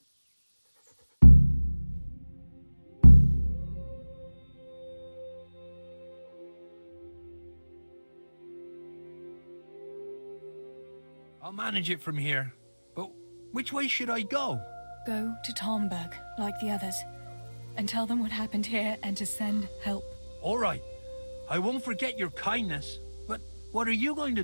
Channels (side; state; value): both; inverted; correlation -1.00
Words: I'll manage it from here. But which way should I go? Go to Talmberg, like the others, and tell them what happened here and to send help. All right. I won't forget your kindness. But what are you going to